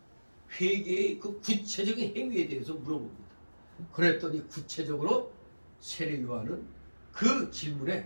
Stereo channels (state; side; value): inverted; both; correlation -1.00